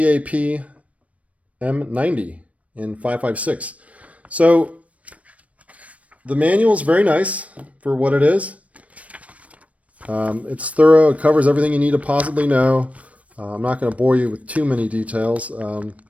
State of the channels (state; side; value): late; left; 0.066 ms